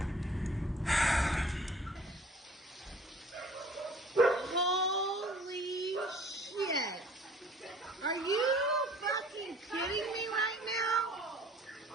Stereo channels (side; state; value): both; normal; correlation 0.51